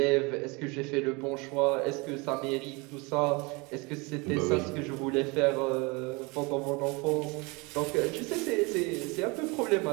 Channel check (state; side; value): quieter; left; 27.3 dB